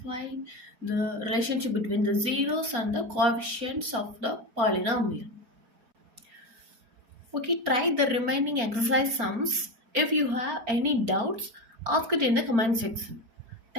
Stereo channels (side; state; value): left; late; 4.4 ms